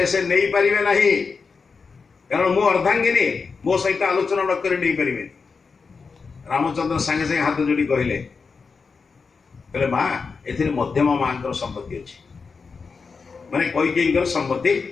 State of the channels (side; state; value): right; quieter; 5.0 dB